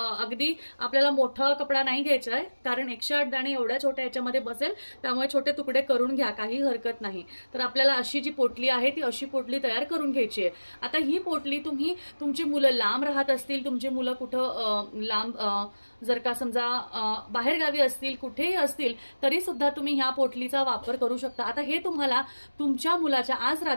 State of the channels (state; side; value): inverted; both; correlation -1.00